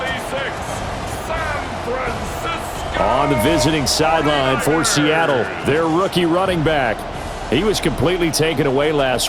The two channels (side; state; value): both; identical; correlation 1.00